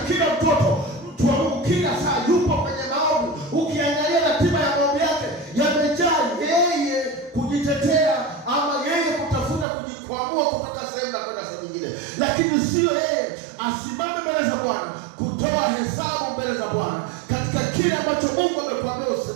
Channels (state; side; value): drops out; left; at 9.7 s